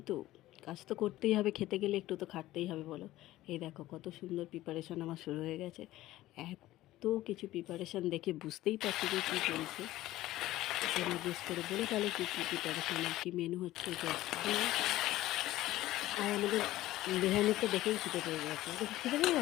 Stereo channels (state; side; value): quieter; right; 15.9 dB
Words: কাজ তো করতেই হবে, খেতে গেলে একটু তো খাটতেই হবে বলো। এই দেখো কত সুন্দর প্রিপারেশন আমার শুরু হয়ে গেছে। এত কিছু প্রিপারেশন দেখে বুঝতেই পারছি যে কী চলছে। তোমরা গেস করে বলে তাহলে কী কী প্রিপারেশন আর কী মেনু হচ্ছে। আর আমাদের রেহানের তো দেখেই খিদে পেয়ে গেছে, খিদে পেয়ে